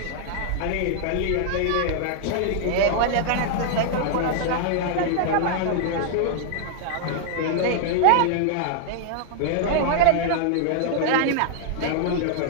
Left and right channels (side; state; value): both; different; correlation 0.00